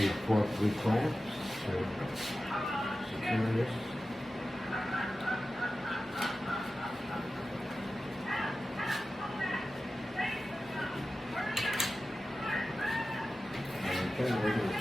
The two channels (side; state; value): both; normal; correlation 0.94